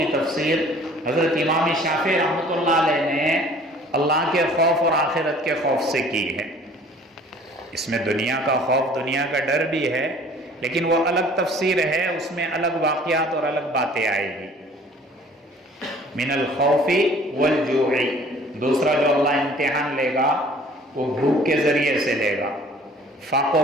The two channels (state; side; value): normal; both; correlation 0.52